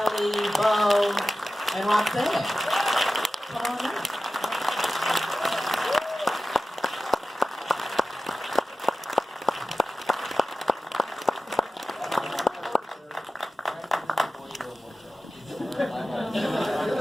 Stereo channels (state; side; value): normal; both; correlation 0.94